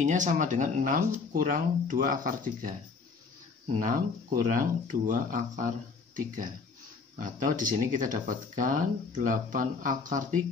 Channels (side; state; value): right; quieter; 4.8 dB